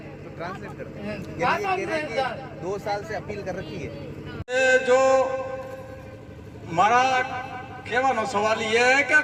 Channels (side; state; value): both; identical; correlation 1.00